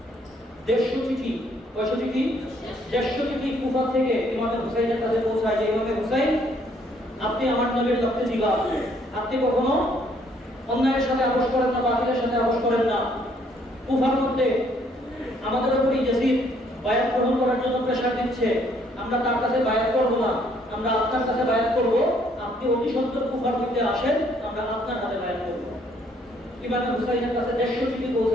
150 চিঠি, কয়শো চিঠি? 150 চিঠি কুফা থেকে ইমামে হুসাইনের কাছে পৌঁছায় যে ইমামে হুসাইন, আপনি আমার নবীর রক্তে জিগাব, আপনি কখনো অন্যায়ের সাথে আপোষ করেন না, বাতিলের সাথে আপোষ করেন না। কুফার মধ্যে আমাদের উপরই ইয়াজিদ বায়াত গ্রহণ করার জন্য প্রেসার দিচ্ছে, আমরা তার কাছে বায়াত করব না, আমরা আপনার কাছে বায়াত করব, আপনি অতি সত্বর কুফার মধ্যে আসেন, আমরা আপনার হাতে বায়াত করব। ইমাম হুসাইনের কাছে 150 চিঠি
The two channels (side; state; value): both; normal; correlation 0.66